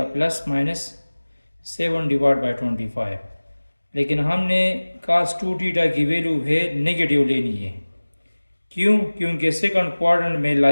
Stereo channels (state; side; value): inverted; both; correlation -1.00